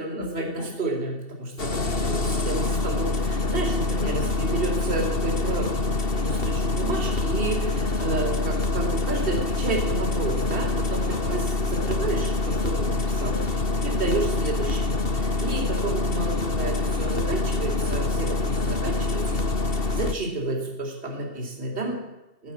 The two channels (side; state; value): right; late; 2.7 ms